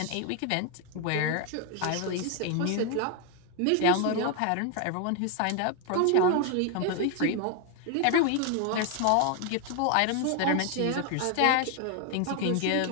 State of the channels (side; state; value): both; different; correlation 0.01